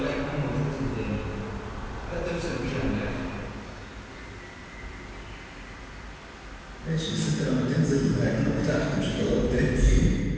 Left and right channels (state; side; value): identical; both; correlation 1.00